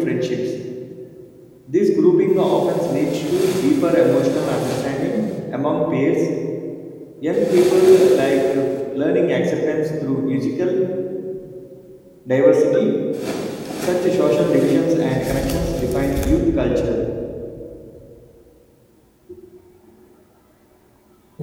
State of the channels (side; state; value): both; identical; correlation 1.00